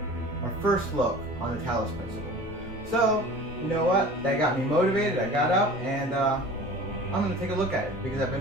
our first look on the Talos principle. So, you know what? That got me motivated. I got up and I'm going to take a look at it because I've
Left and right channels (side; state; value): both; normal; correlation 0.41